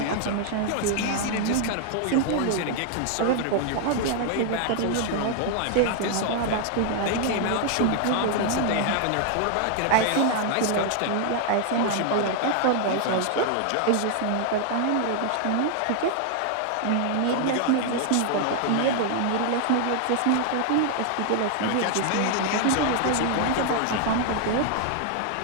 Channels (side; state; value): both; different; correlation 0.00